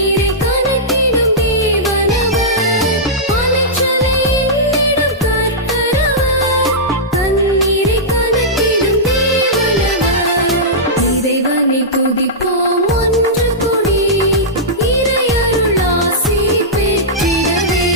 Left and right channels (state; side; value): normal; both; correlation -0.13